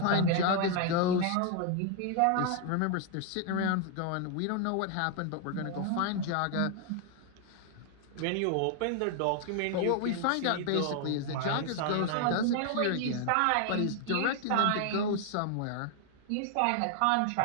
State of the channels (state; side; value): different; both; correlation 0.00